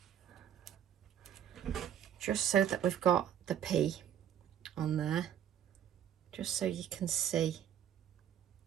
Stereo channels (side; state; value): left; quieter; 9.9 dB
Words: Just so that we've got the P on there. Just so you can see.